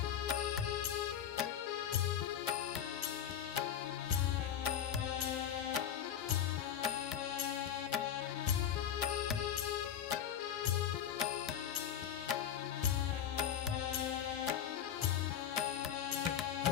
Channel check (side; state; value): right; quieter; 9.3 dB